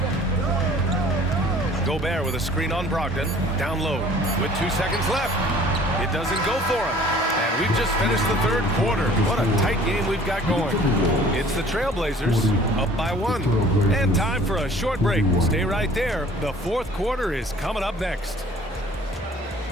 Gobert with a screen on Brogdon. Down low with 2 seconds left. It doesn't go for him. And we've just finished the third quarter. What a tight game we've got going. It's the Trailblazers up by 1. And time for a short break. Stay right there. The fourth quarter is coming up next.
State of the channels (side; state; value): both; normal; correlation 0.52